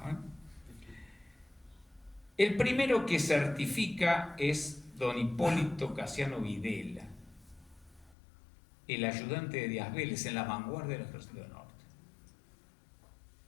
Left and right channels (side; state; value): right; drops out; at 8.2 s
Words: El primero que certifica es don Hipólito Casiano Videla, el ayudante de Díaz Vélez en la vanguardia del Ejército del Norte.